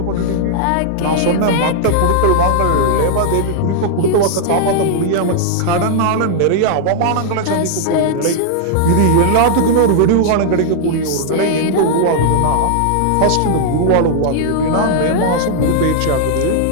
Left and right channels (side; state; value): both; different; correlation -0.01